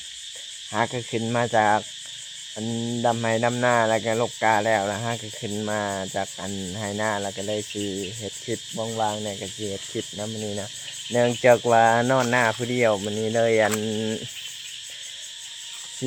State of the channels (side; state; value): both; identical; correlation 1.00